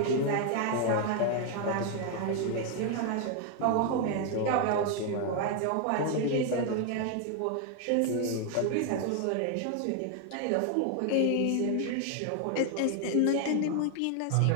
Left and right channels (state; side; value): different; both; correlation 0.00